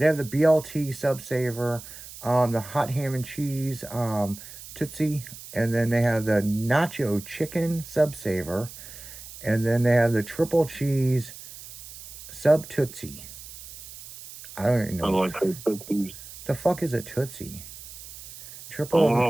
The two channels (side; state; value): right; noise; hiss, 15 dB below the sound